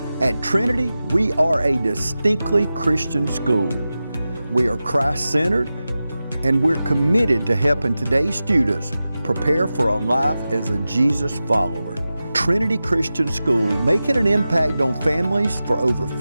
At Trinity, we are a distinctly Christian school. We are Christ-centered, and we're committed to helping today's students prepare for a life as a Jesus follower. Trinity Christian School, making an impact on families for over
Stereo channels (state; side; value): inverted; both; correlation -0.94